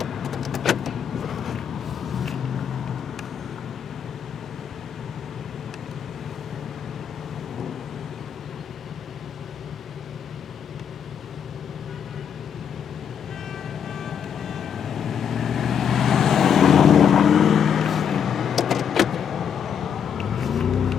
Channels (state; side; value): quieter; right; 7.9 dB